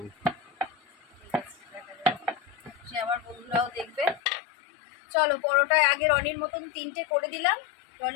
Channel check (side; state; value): right; drops out; at 4.2 s